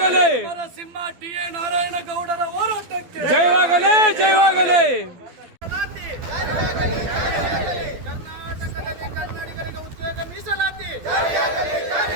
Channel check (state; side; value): late; left; 12 ms